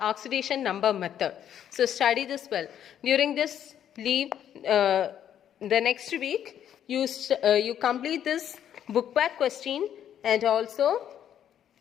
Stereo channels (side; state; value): right; quieter; 9.9 dB